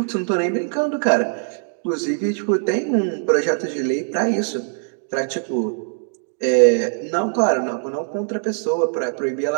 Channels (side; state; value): left; silent; digital silence